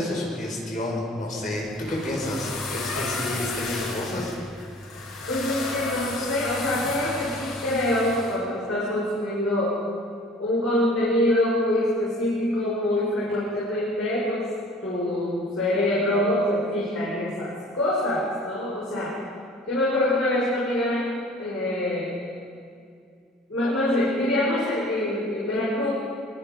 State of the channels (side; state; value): both; normal; correlation 0.47